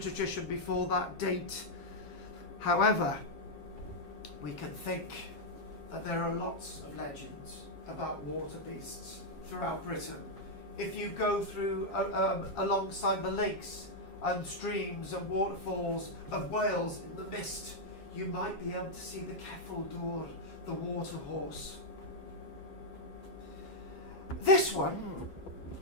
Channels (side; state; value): right; late; 7.4 ms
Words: before that date. However, we can think that there are lots of legends about water beasts throughout Britain. If you go through alongside the lakes and streams and waterfalls of Wales in the mist, you might be able to see the Ceffyl Dŵr, the water horse. This one